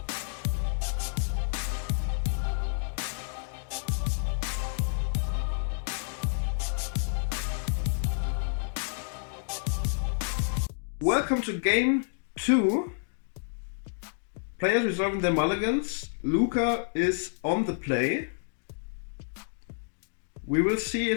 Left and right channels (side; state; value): right; silent; digital silence